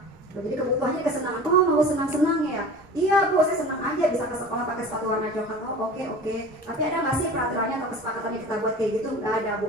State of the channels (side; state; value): both; normal; correlation 0.38